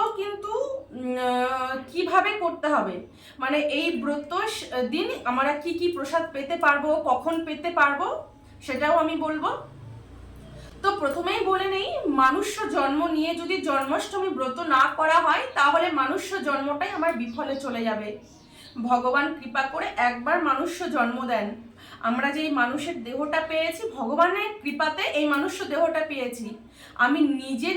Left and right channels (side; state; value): both; identical; correlation 1.00